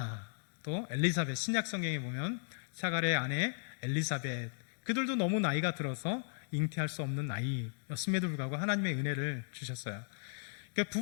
또 엘리사벳, 신약 성경에 보면 사가랴의 아내 엘리사벳, 그들도 너무 나이가 들어서 잉태할 수 없는 나이였음에도 불구하고 하나님의 은혜를 주셨어요. 그러니까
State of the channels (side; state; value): right; silent; digital silence